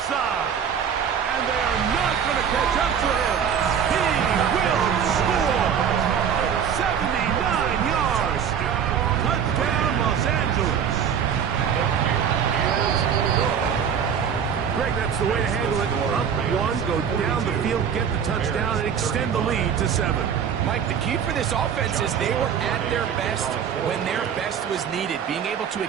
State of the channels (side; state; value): left; quieter; 7.8 dB